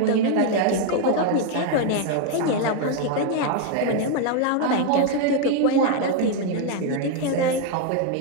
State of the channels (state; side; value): different; both; correlation 0.01